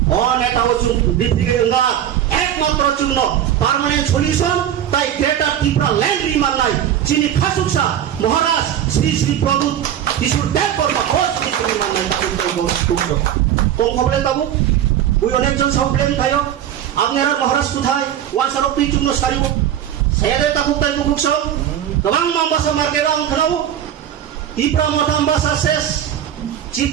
অনেটাও চুন ডিফিকে না একমাত্র চুন পার্মানেন্ট সলিউশন তাই গ্রেটার ত্রিপুরা ল্যান্ড রিমান নাই চিনি খাসুকসা মহারাজ শ্রী শ্রী প্রদূত কিশোর দেব বর্মা হোস চিনি রিমান নাই তাকে তো কোন খবরে তাবু ওই অনেকজন সব প্লেন খায়ো আপনারা মহারাজ কোথায় ওয়ান সরব তুই চুন সারিব সায়াদে তাকুক তাই বুকুকস গোবাং মামবাসা মার্কেট আং খানাবো ত্রিপুরা মতামবাসা শেষ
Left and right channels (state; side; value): quieter; left; 10.5 dB